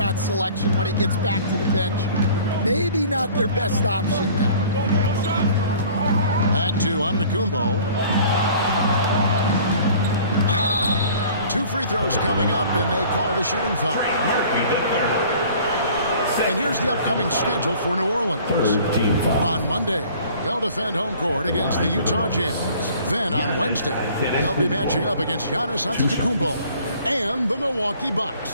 selection when he gets back to the bench. Maybe not their best option now. Back to Antetokounmpo. 2 free throws coming up, and they call the shooting foul. And here's the upcoming schedule for New Orleans. On Monday, they'll defend home court against the Utah Jazz. Then on Wednesday, they'll be matching up against Giannis Antetokounmpo and the Milwaukee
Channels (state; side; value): inverted; both; correlation -0.50